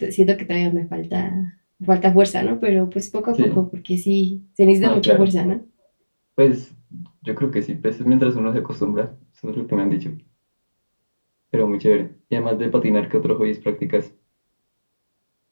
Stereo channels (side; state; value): both; inverted; correlation -1.00